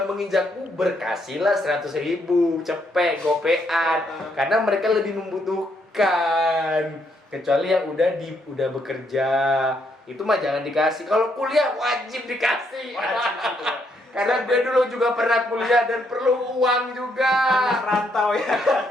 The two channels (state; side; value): normal; both; correlation 0.74